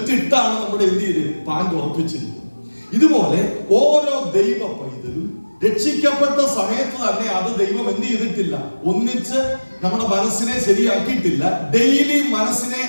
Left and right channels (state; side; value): inverted; both; correlation -1.00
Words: ഇട്ടാണ് നമ്മുടെ എന്ത് ചെയ്ത് പാന്റ് ഉറപ്പിച്ചിരിക്കുന്നത്. ഇതുപോലെ ഓരോ ദൈവ പൈതലും രക്ഷിക്കപ്പെട്ട സമയത്ത് തന്നെ അത് ദൈവം എന്ത് ചെയ്തിട്ടില്ല, ഒന്നിച്ച് നമ്മുടെ മനസ്സിനെ ശരിയാക്കിയിട്ടില്ല. ഡെയിലി മനസ്സിനെ